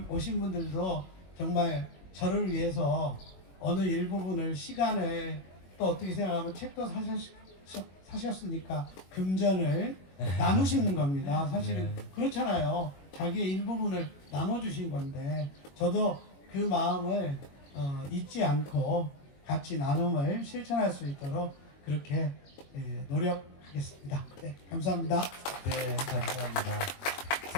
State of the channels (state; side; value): late; right; 21 ms